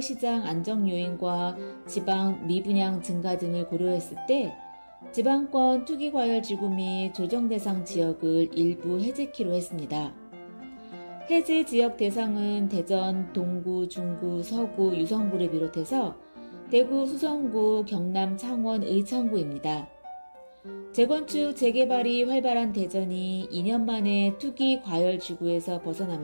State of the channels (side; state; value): both; inverted; correlation -1.00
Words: 안정 요인과 지방 미분양 증가 등을 고려했을 때 지방권 투기과열지구 및 조정대상 지역을 일부 해제키로 했습니다. 해제 지역 대상은 대전, 동구, 중구, 서구, 유성구를 비롯해서 대구, 수성구, 경남, 창원, 의창구입니다. 재건축, 재개발이 활발한 대전이 2년 만에 투기 과열 지구에서